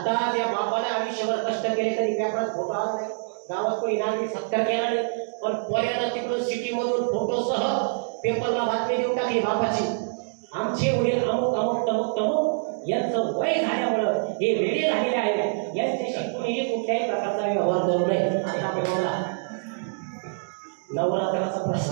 त्या बापाने आयुष्यभर कष्ट केले तरी पेपरात फोटो आला नाही, गावात कोणी नागरिक सत्कार केला नाही, पण पोऱ्यानं तिकडून सिटीमधून फोटोसह पेपरला बातमी देऊन टाकली बापाची, आमचे वडील अमुक अमुक तमुक तमुक यांचं वय झाल्यामुळं हे वेळे झालेले आहेत, यांच्याशी कोणीही कुठल्याही प्रकारचा व्यवहार करू नये. आता बघा नवरात्राचा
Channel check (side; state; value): left; silent; digital silence